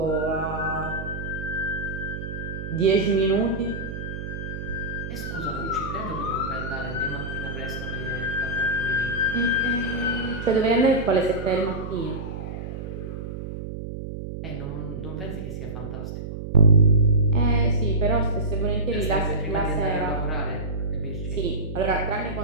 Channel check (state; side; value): noise; right; hum, 7 dB below the sound